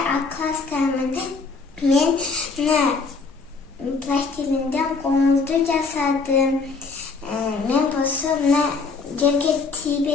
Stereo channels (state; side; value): quieter; right; 4.4 dB